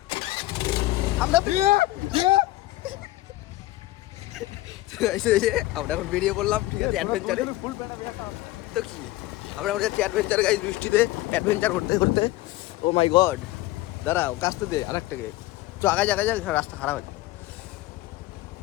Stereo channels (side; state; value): right; quieter; 17.6 dB